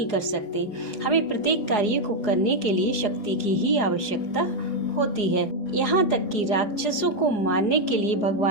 कर सकते। हमें प्रत्येक कार्य को करने के लिए शक्ति की ही आवश्यकता होती है। यहाँ तक कि राक्षसों को मारने के लिए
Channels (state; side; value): late; right; 4.8 ms